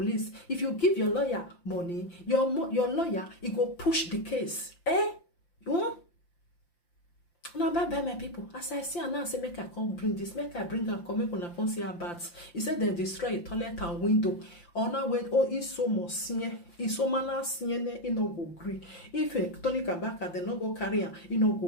If you give your lawyer money, your lawyer he go push the case. You want? Now bye my people. As I see now, I say make I come bring this, make I bring and come make una come see about. He said they destroy a toilet and window. Or now when it's so much it's so mana he no go agree. If Tony Kabaka they no go carry him, he no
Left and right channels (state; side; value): late; right; 5.8 ms